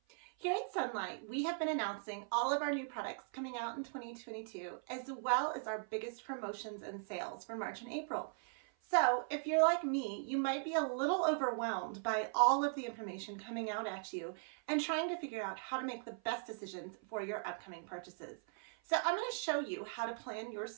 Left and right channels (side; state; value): left; silent; 52 dB below the other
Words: Here at Sunlight, we have been announcing all of our new products coming out in 2022, as well as our biggest promotions and sales for March and April. So if you're like me, you might be a little overwhelmed by all of the information coming out at you and trying to figure out how to make the best decisions for your upcoming purchases. So I'm going to show you how to plan your